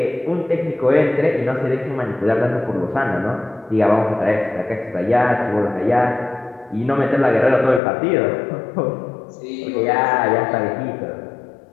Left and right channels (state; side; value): drops out; right; at 7.8 s